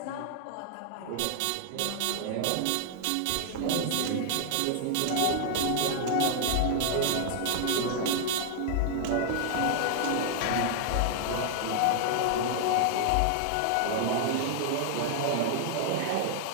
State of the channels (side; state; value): both; different; correlation 0.00